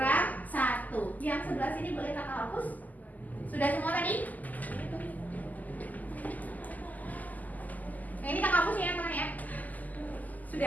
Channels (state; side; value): late; right; 0.080 ms